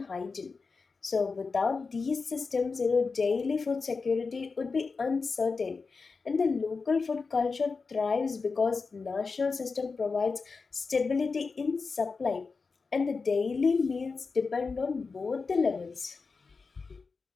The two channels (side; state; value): right; quieter; 4.6 dB